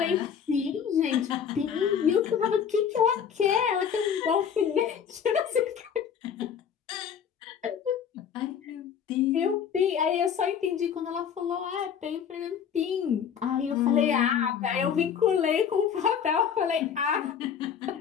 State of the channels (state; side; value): quieter; right; 7.7 dB